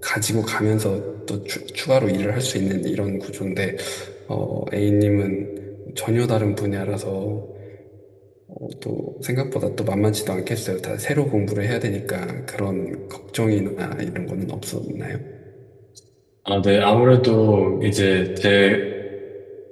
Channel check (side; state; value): both; identical; correlation 1.00